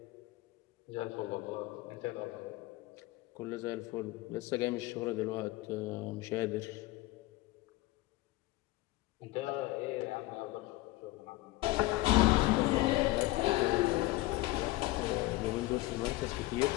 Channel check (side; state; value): right; quieter; 19.0 dB